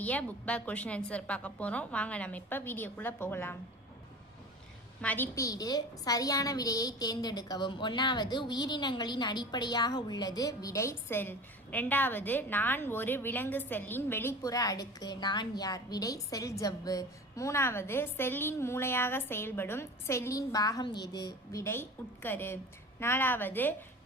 புக் பேக் கொஷின் ஆன்சர் பார்க்க போகிறோம். வாங்க நம்ம இப்போ வீடியோக்குள்ளே போகலாம். மதிப்பீடு சரியான விடையை தேர்ந்தெடுக்கவும். 1வது உயிரினங்களின் அடிப்படையாக உள்ளது விடை செல். 2வது நான் ஒரு விலங்கு செல்லின் வெளிப்புற அடுக்கு நான் யார் விடை செல் ஜவ்வு. 3வது செல்லின் மூளையாக செயல்படும் செல்லின் பாகம் எது விடை உட்கரு. 4வது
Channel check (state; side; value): normal; both; correlation 0.36